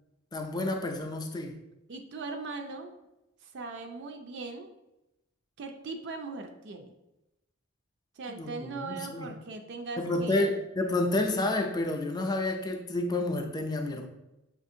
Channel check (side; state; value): both; normal; correlation 0.45